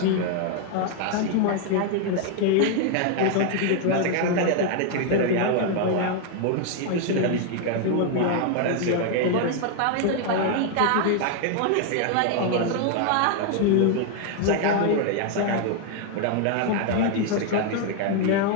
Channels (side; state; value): both; different; correlation 0.00